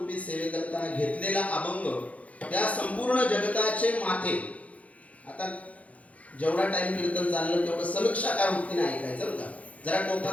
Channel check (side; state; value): right; late; 0.067 ms